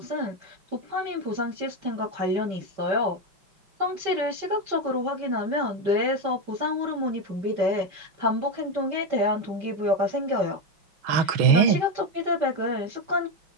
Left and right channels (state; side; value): late; left; 5.2 ms